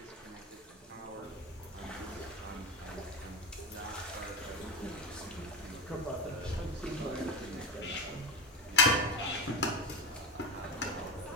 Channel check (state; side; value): normal; both; correlation 0.18